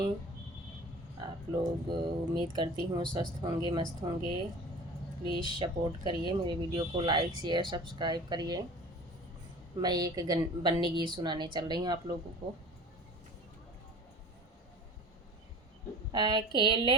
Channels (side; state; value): both; normal; correlation 0.41